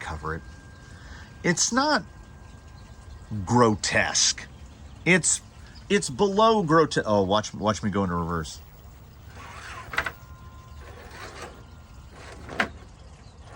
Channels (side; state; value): both; identical; correlation 1.00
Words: cover it. It's not grotesque. It's below grotesque. Oh, watch me go into reverse.